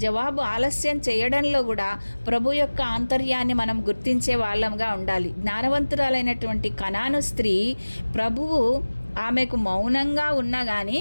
జవాబు ఆలస్యం చేయడంలో కూడా ప్రభు యొక్క ఆంతర్యాన్ని మనం గుర్తించే వాళ్ళంగా ఉండాలి. జ్ఞానవంతురాలైనటువంటి కనాను స్త్రీ ప్రభువు ఆమెకు మౌనంగా ఉన్నా కానీ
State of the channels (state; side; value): inverted; both; correlation -1.00